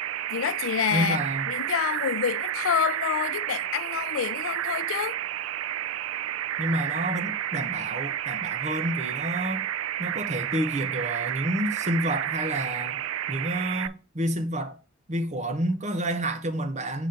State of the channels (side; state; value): both; normal; correlation 0.13